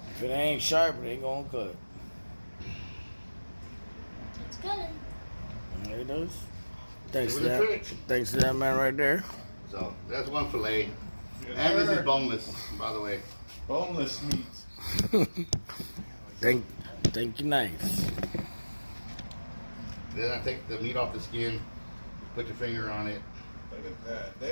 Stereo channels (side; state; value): both; inverted; correlation -1.00